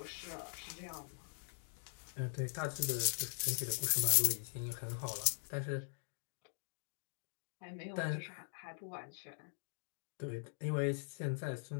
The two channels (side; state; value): right; silent; digital silence